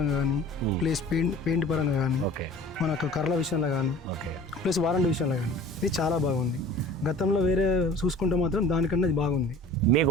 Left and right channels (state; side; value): normal; both; correlation 0.45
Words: కానీ, ప్లస్ పెయింట్ పరంగా కానీ, మనకు కర్రల విషయంలో కానీ, ప్లస్ వారంటీ విషయంలో కానీ ఇది చాలా బాగుంది. గతంలో వేరే చూసుకుంటే మాత్రం దానికన్నా ఇది బాగుంది. మీకు